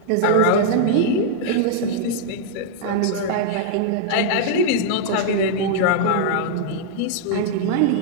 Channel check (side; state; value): both; different; correlation -0.01